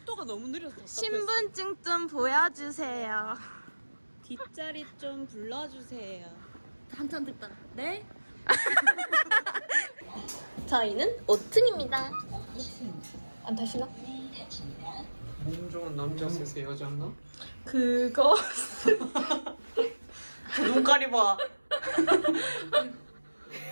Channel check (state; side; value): inverted; both; correlation -1.00